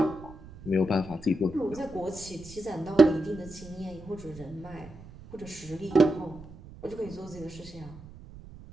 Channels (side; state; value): right; noise; rumble, 17 dB below the sound